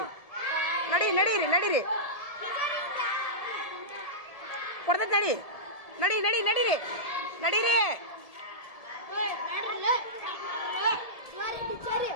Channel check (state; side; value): late; right; 1.7 ms